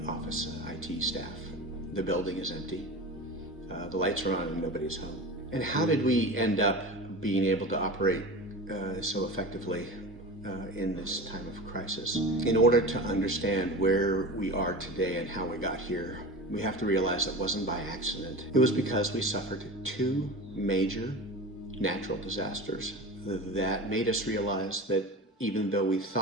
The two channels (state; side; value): normal; both; correlation 0.31